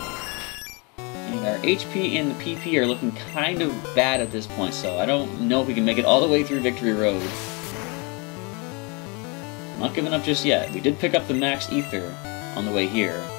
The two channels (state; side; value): quieter; right; 31.0 dB